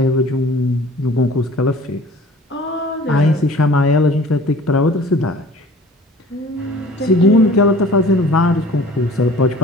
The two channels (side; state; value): both; normal; correlation 0.46